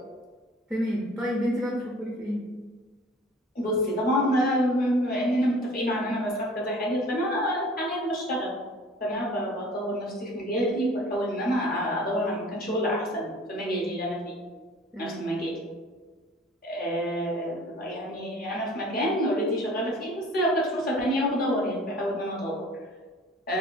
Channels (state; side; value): normal; both; correlation 0.47